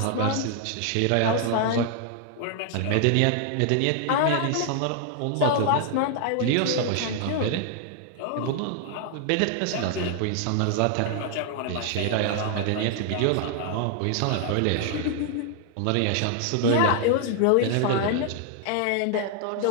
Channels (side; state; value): both; different; correlation 0.00